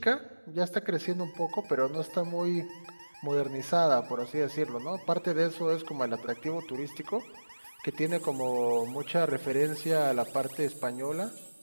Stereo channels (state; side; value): inverted; both; correlation -1.00